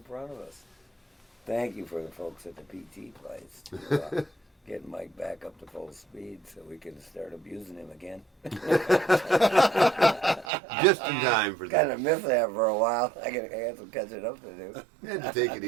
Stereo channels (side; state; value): left; drops out; at 10.5 s